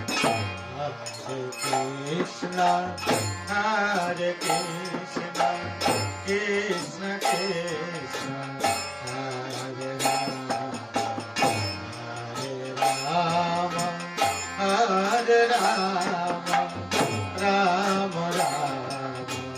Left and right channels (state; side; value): identical; both; correlation 1.00